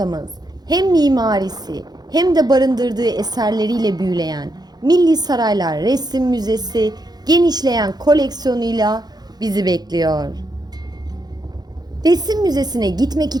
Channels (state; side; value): late; left; 0.19 ms